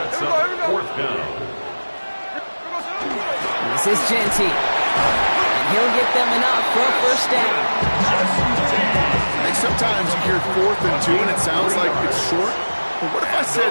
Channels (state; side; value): inverted; both; correlation -1.00